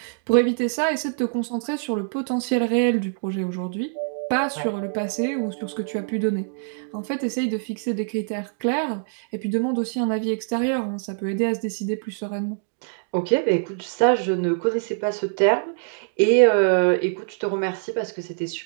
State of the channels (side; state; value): left; silent; digital silence